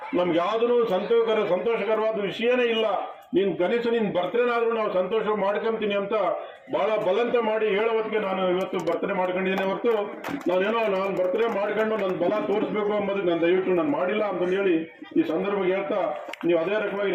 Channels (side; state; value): both; identical; correlation 1.00